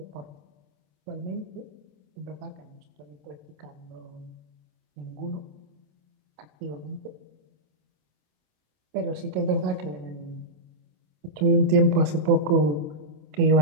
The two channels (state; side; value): late; left; 27 ms